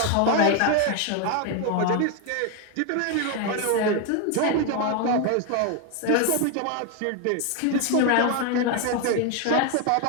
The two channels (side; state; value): both; different; correlation 0.01